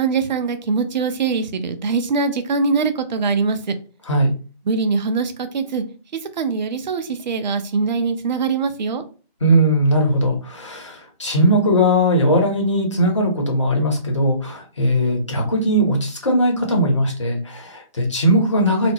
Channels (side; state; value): both; inverted; correlation -0.50